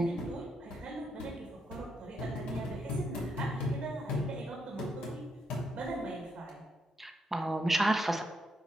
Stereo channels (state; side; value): normal; both; correlation 0.78